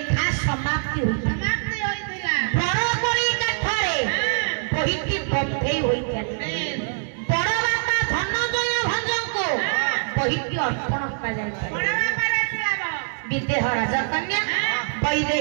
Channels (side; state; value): left; silent; digital silence